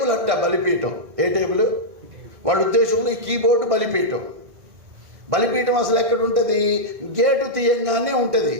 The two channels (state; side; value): late; left; 1.6 ms